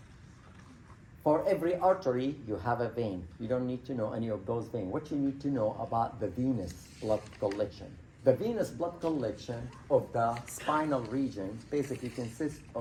for every artery, you have a vein. You don't need to know any of those veins. What you need to know about the venous blood collection. The venous blood collection of the spinal region basically consists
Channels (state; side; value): identical; both; correlation 1.00